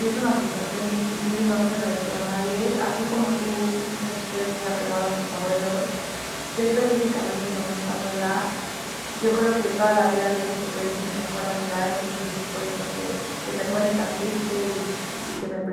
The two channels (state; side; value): identical; both; correlation 1.00